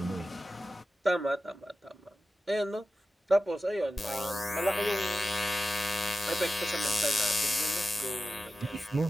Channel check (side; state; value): both; normal; correlation 0.93